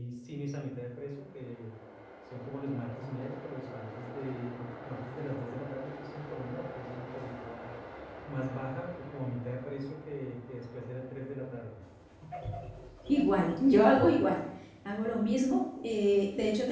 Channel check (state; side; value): identical; both; correlation 1.00